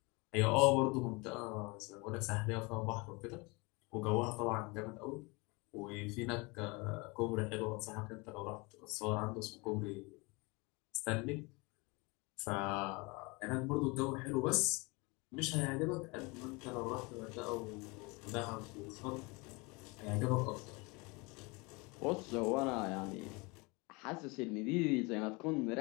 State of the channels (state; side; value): quieter; right; 27.1 dB